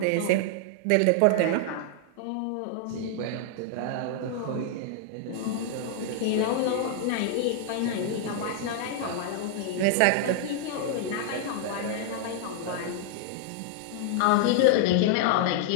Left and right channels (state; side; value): different; both; correlation 0.00